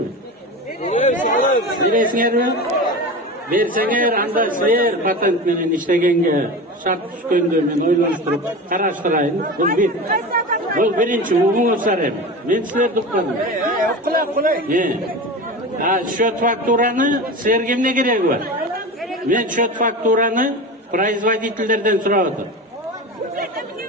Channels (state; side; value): normal; both; correlation 0.28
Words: Бересиңерби? Берсеңер, анда силер патент менен иштегенге шарт түшкөндө мен ойлонуштуруп караштырайын. Бул биринчи угуңуздар эми. Мен силерди укпадым. Счет фактураны силерге эмне кереги бар? Мен счет фактураны производительдерден сурап атам.